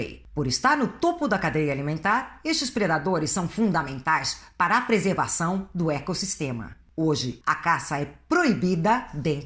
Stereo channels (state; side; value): identical; both; correlation 1.00